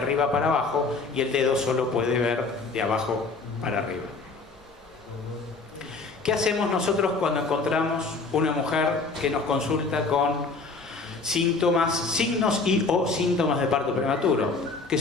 para abajo y el dedo solo puede ver de abajo para arriba. ¿Qué hacemos nosotros cuando encontramos una mujer que nos consulta con signos y o síntomas de parto prematuro? Que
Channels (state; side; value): quieter; right; 4.0 dB